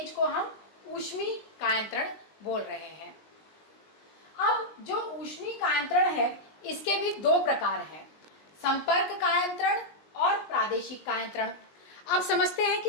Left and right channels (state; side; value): late; right; 19 ms